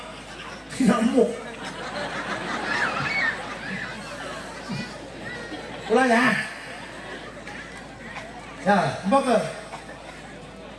Nyamuk. Ulah ya. Ya, mbak.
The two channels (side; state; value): both; identical; correlation 1.00